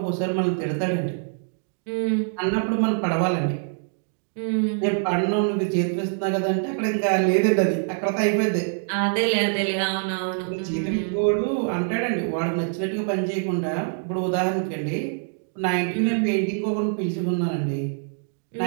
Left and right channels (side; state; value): left; silent; 62 dB below the other